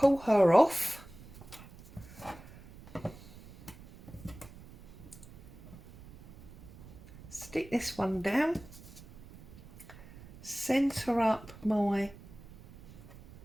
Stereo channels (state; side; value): noise; right; rumble, 19 dB below the sound